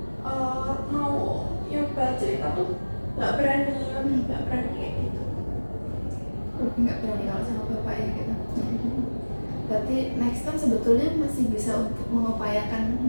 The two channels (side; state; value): both; inverted; correlation -1.00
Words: mau nyoba cerita tuh nggak berani kayak gitu. Nggak berani kalau sama bapak ya gitu. Berarti next time sebetulnya masih bisa untuk mengupayakan